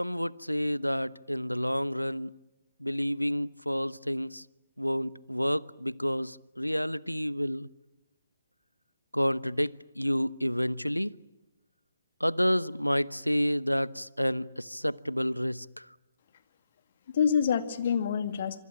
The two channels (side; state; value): both; inverted; correlation -0.94